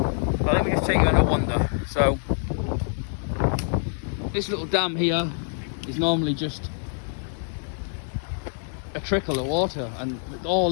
let me just take you on a wander. So this little dam here is normally just a trickle of water, and all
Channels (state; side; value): silent; right; digital silence